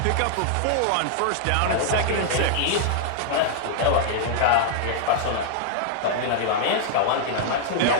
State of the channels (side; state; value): both; different; correlation -0.01